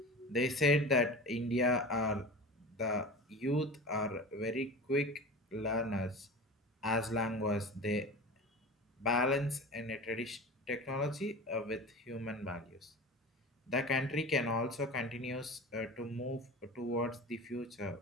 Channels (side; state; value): both; normal; correlation 0.32